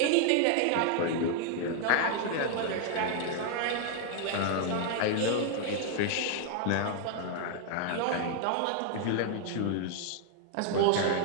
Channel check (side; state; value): both; different; correlation 0.00